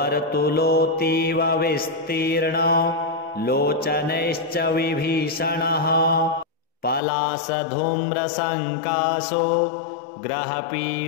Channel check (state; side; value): drops out; right; at 7.0 s